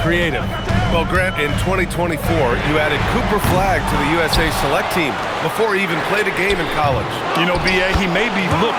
creative. Well, Grant, in 2024, you added Cooper Flagg to the USA Select team before he even played a game in college. You know, B.A., he made me look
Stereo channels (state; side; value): identical; both; correlation 1.00